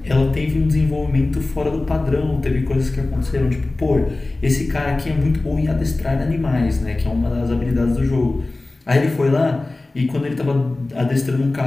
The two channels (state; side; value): quieter; right; 3.0 dB